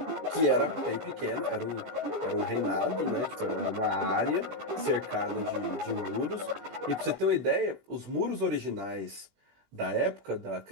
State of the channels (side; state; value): left; late; 20 ms